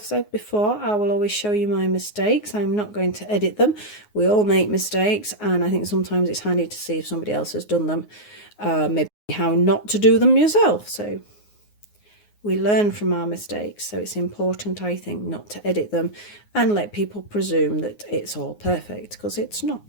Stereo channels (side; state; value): right; late; 9.6 ms